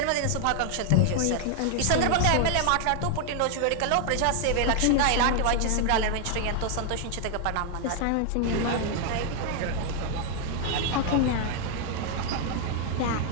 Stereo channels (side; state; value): both; different; correlation 0.00